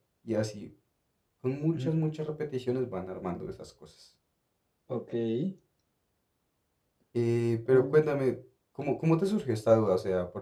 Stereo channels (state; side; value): identical; both; correlation 1.00